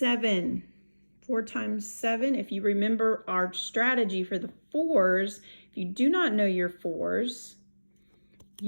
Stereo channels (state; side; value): inverted; both; correlation -1.00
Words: 4 times 7, if you remember our strategy for the 4s, if you do not know your 4s,